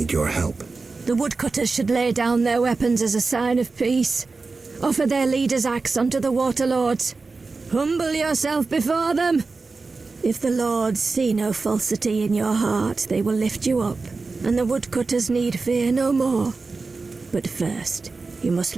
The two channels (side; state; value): left; quieter; 4.0 dB